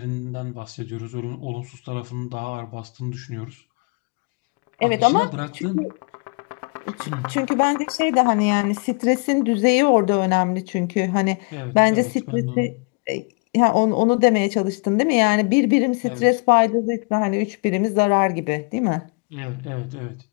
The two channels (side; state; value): right; quieter; 32.7 dB